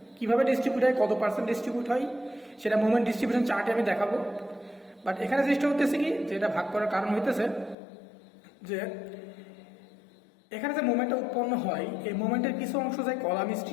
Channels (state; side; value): drops out; right; at 7.8 s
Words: কিভাবে ডিস্ট্রিবিউট হয়, কত পার্সেন্ট ডিস্ট্রিবিউট হয়, সেটা মোমেন্ট ডিস্ট্রিবিউশন চার্টে আমি দেখাবো। বাট এখানে চেষ্টা হতেছে কি, যে এটা ভাগ করার কারণ হইতেছে যে এখানে যে মোমেন্টটা উৎপন্ন হয়, এই মোমেন্টের কিছু অংশ যায় কলাম